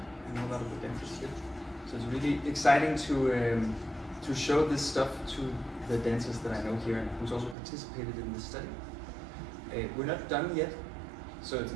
I know a lot of the dancers here. So it's really exciting to show this stuff to the dancers that I know here and who's also participated in this study. We're not done yet, so it's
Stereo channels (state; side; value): drops out; left; at 7.6 s